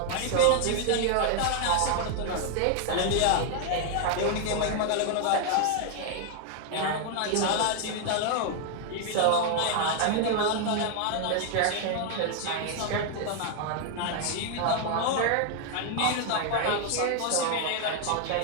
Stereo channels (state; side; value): different; both; correlation 0.00